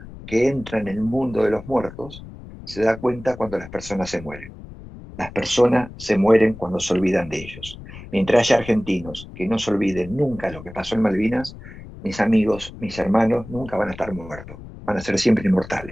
que entra en el mundo de los muertos se da cuenta cuando las personas se mueren. Las personas se mueren cuando se olvidan de ellos. Mientras haya argentinos que no se olviden nunca lo que pasó en Malvinas, mis amigos, mis hermanos, nunca van a estar muertos. Van a ser siempre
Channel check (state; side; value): noise; left; rumble, 15 dB below the sound